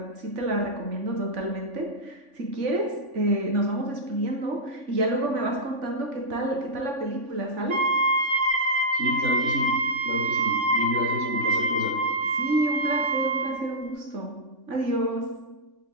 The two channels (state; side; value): late; left; 3.5 ms